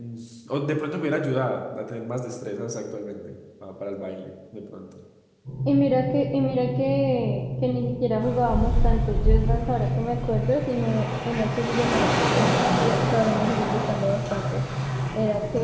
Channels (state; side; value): identical; both; correlation 1.00